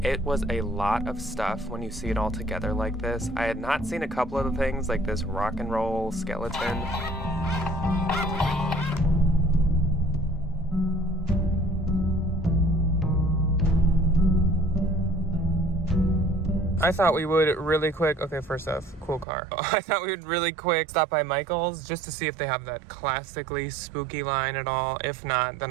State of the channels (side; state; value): left; drops out; at 19.2 s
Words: It was a lot of stuff when you see it all together like this. I had not seen a couple of the things like this rock and roll skeleton. I thought we would really quick, okay, first off, cool car. I thought we would really quick stop by Michael's just to see if they have that classically spooky line at all. If not,